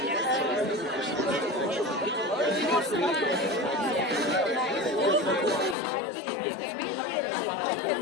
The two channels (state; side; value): drops out; right; at 5.8 s